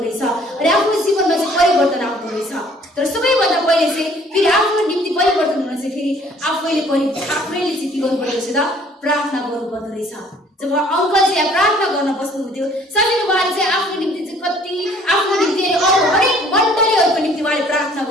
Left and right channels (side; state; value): both; normal; correlation 0.57